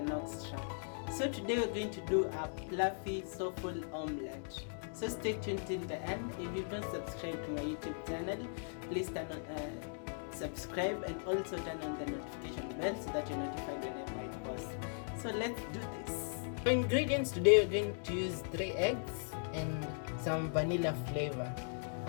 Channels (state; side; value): silent; right; digital silence